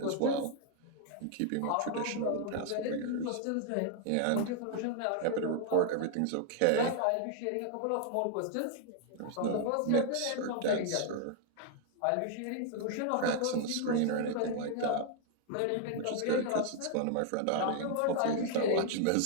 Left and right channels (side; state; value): both; different; correlation 0.00